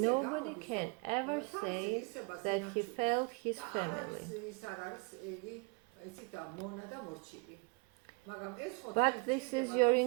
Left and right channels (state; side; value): quieter; left; 31.9 dB